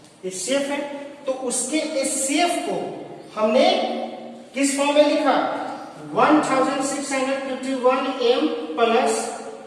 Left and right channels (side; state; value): both; identical; correlation 1.00